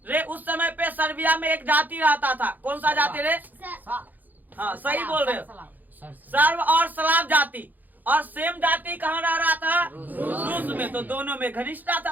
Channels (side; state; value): left; late; 0.084 ms